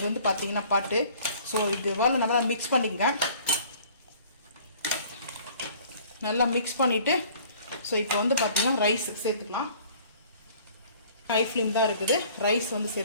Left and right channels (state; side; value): inverted; both; correlation -0.52